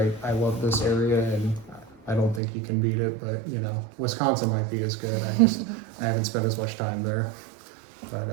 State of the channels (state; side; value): drops out; left; at 2.4 s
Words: I love this area, and I don't think you can beat it. But you know, Wisconsin might be as good. I haven't spent as much time there. But